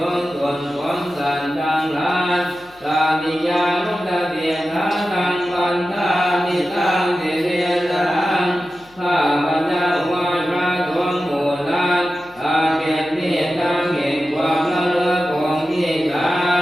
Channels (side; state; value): left; noise; hum, 29 dB below the sound